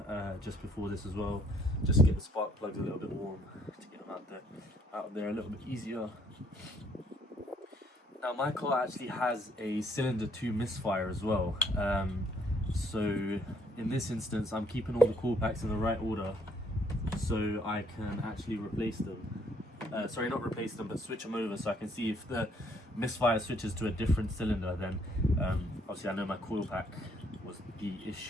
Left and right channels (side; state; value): both; normal; correlation 0.66